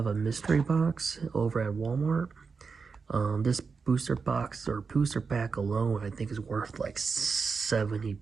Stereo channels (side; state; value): left; quieter; 5.1 dB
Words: a mystery box over at Walmart. This booster box or booster pack alone, I think is worth like $70